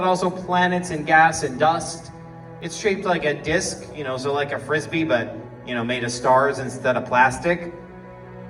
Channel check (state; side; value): identical; both; correlation 1.00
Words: also planets and gas and dust. It's shaped like a disc, so like a frisbee, but, made of stars instead of plastic.